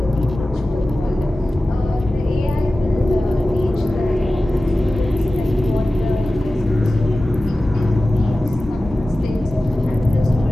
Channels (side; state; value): both; normal; correlation 0.95